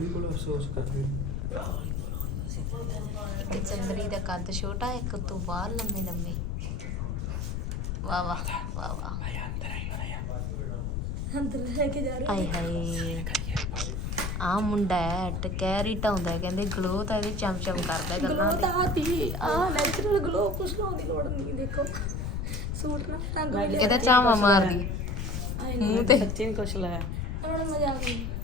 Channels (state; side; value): noise; left; rumble, 1 dB below the sound